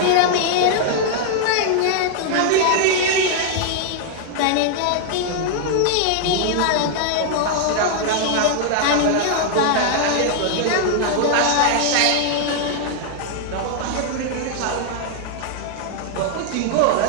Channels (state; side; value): different; both; correlation 0.00